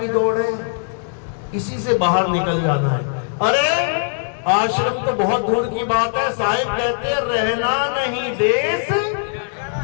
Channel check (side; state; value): right; silent; digital silence